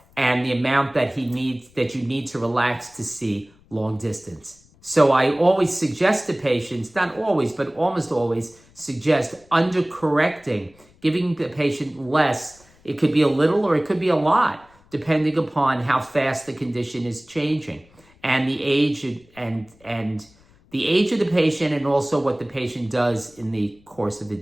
and the amount that you need to relax to see long distance. So I always suggest to patients, not always, but almost always suggest undercorrecting, giving the patient less. It could be a little or it could be a lot, depending upon how fast the condition is changing and the age and the age of the patient, and also what the patient does in the course of the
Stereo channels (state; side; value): noise; left; rumble, 29 dB below the sound